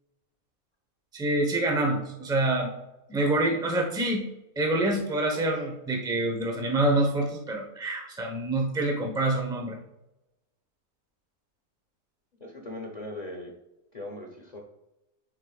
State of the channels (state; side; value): normal; both; correlation 0.07